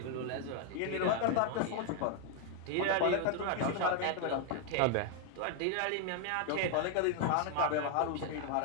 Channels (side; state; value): both; different; correlation 0.00